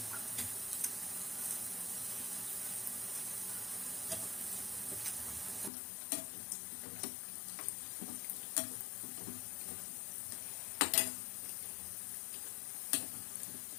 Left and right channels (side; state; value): right; drops out; at 5.7 s